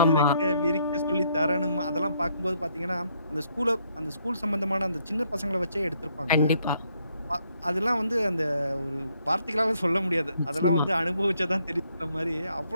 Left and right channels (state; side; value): inverted; both; correlation -0.71